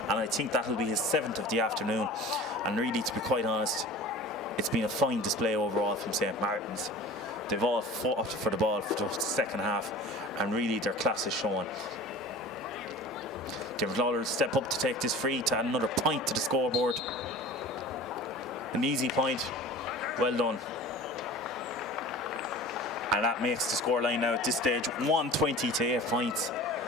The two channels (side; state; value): both; normal; correlation 0.39